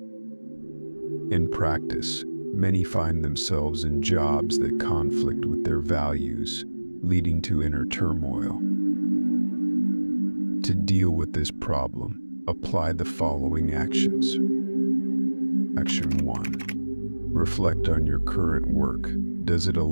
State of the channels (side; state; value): both; inverted; correlation -1.00